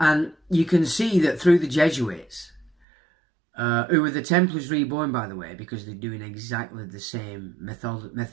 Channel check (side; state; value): left; drops out; at 2.7 s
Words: you can see that through the Jesuits, who were the Templars reborn, by the way, because they're doing exactly the same